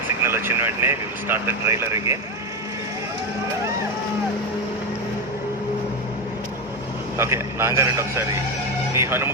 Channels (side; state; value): both; normal; correlation 0.13